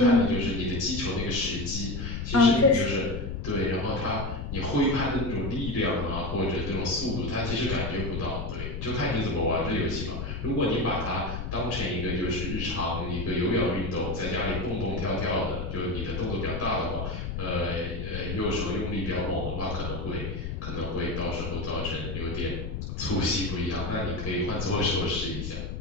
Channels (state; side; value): noise; left; rumble, 5 dB below the sound